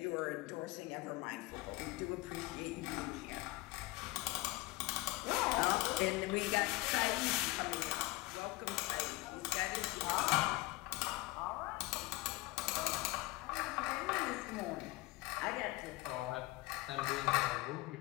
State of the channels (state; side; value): quieter; right; 20.7 dB